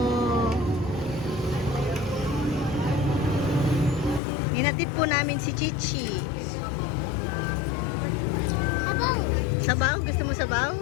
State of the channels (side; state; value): right; drops out; at 4.2 s